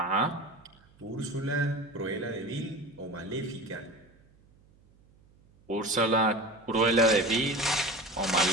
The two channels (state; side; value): noise; right; hum, 30 dB below the sound